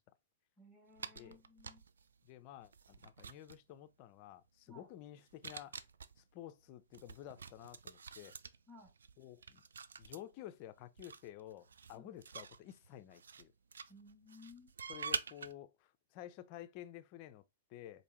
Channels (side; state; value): both; inverted; correlation -0.52